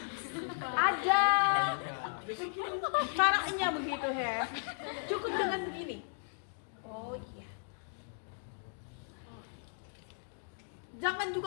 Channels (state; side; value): silent; right; digital silence